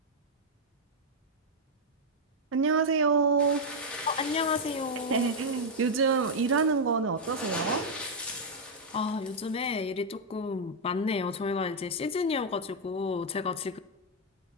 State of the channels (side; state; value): both; normal; correlation -0.02